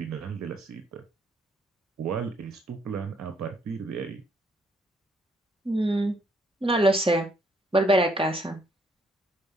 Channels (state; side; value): normal; both; correlation 0.69